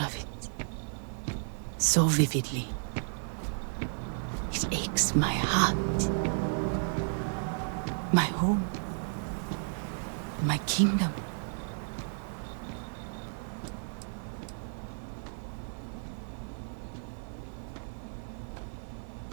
it. So vividly. It aches my heart. My home. My kingdom.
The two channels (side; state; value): left; silent; digital silence